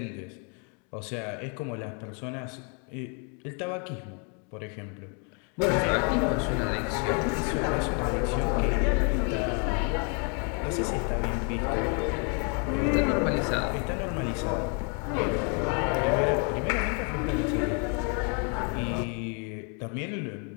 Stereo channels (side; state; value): right; quieter; 37.9 dB